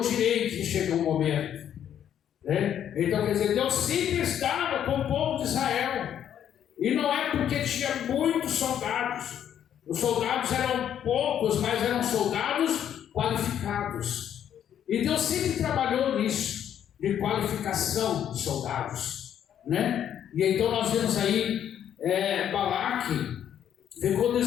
direi que chega um momento, né? Então, quer dizer, Deus sempre estava com o povo de Israel, e não é porque tinha muitos soldados. Os soldados eram poucos, mas eram soldados qualificados, e Deus sempre trabalhou nisso, de qualificação de soldados, né? E então nós vemos aí Balaque ficou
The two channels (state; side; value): quieter; right; 9.8 dB